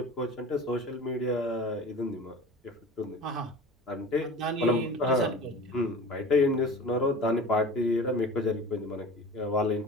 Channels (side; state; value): both; normal; correlation 0.37